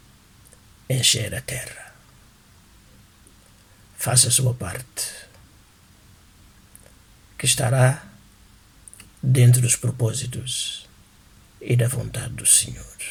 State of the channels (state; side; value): identical; both; correlation 1.00